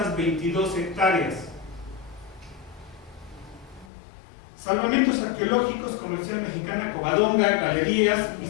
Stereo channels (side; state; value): right; drops out; at 3.9 s